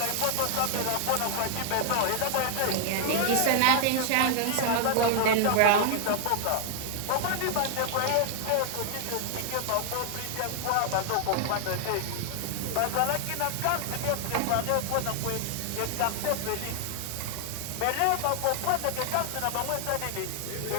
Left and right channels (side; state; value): both; different; correlation 0.00